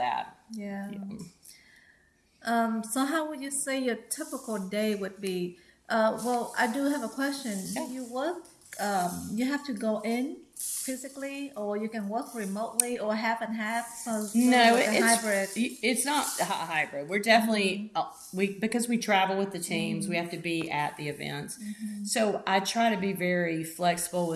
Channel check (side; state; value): both; identical; correlation 1.00